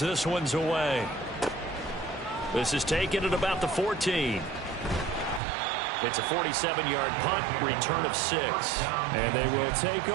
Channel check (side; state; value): left; drops out; at 5.4 s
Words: this one's away. This is taken at about the 14. It's a 47-yard punt, return of 6. And they will take